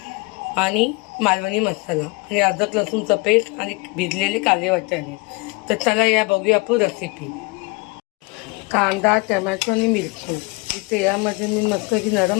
आणि मालवणी मसाला आणि अद्रक लसूणचा पेस्ट आणि भिजलेले काळे वाटाणे. तर चला या बघूया आपण रेसिपी. कांदा, टमॅटो आणि मिरची ही तेलामध्ये मी मस्त की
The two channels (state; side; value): quieter; right; 27.5 dB